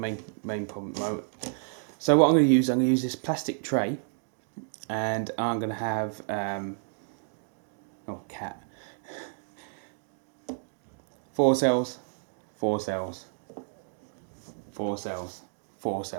main problem at the moment. So what I'm going to use this plastic tray, and I'm going to have cat. 4 cells, 4 cells, 4 cells, 4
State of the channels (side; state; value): left; silent; digital silence